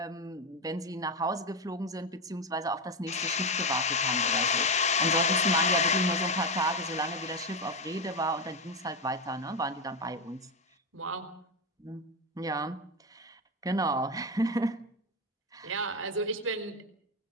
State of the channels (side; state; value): both; normal; correlation 0.12